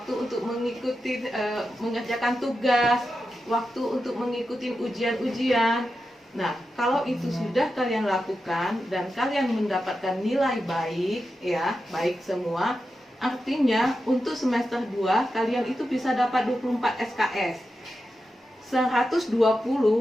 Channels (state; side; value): normal; both; correlation 0.90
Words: untuk mengikuti mengerjakan tugas, waktu untuk mengikuti ujian-ujian. Nah, kalau itu sudah kalian lakukan dan kalian mendapatkan nilai baik, ya, baik semua, artinya untuk semester 2 kalian itu bisa dapat 24 SKS. 120,